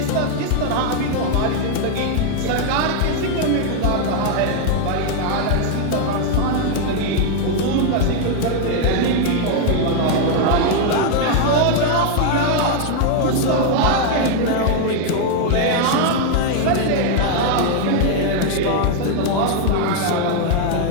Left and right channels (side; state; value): both; different; correlation 0.00